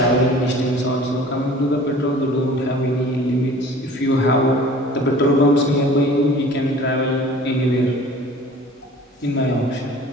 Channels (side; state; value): both; normal; correlation 0.46